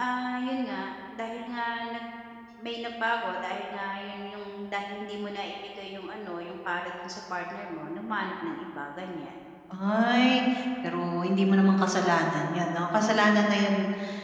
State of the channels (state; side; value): identical; both; correlation 1.00